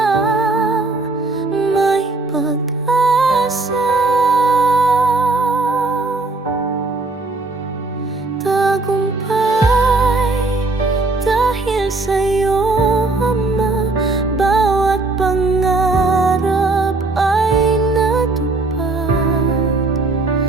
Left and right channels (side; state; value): left; quieter; 3.3 dB